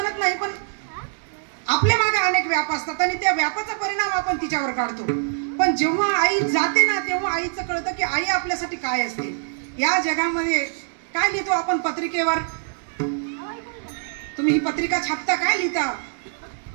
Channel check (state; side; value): silent; left; digital silence